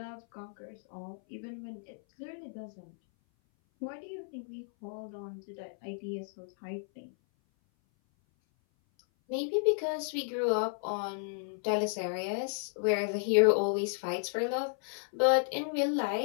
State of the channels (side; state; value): right; silent; 56 dB below the other